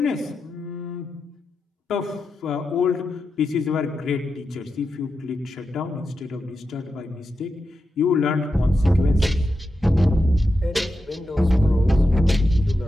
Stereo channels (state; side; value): normal; both; correlation 0.89